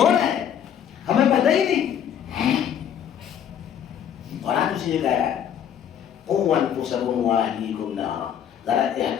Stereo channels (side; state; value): right; quieter; 9.1 dB